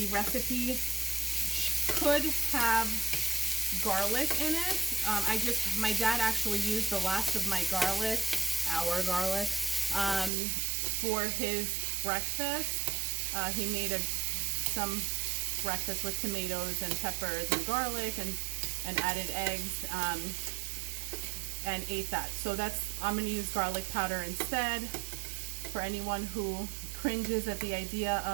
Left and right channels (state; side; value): drops out; left; at 10.3 s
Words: recipe could have garlic in it. My dad actually used the last of my garlic, our garlic, for his breakfast. He made some breakfast with tomatoes and peppers and garlic and added eggs and ate that. So I'm going to use garlic powder instead. For anyone who cringes at the idea